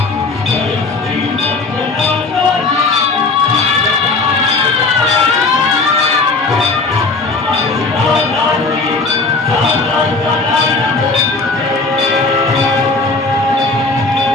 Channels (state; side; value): quieter; right; 3.8 dB